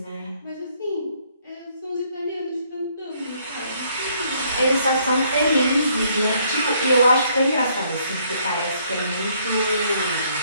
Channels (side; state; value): both; inverted; correlation -0.67